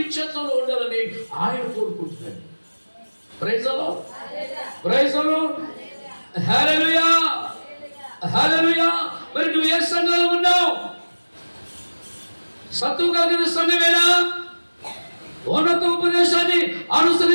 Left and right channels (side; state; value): both; inverted; correlation -1.00